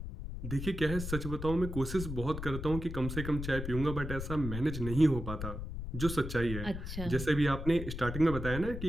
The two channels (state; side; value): noise; left; rumble, 6 dB below the sound